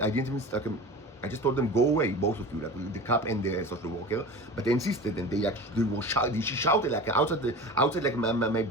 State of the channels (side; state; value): both; normal; correlation 0.35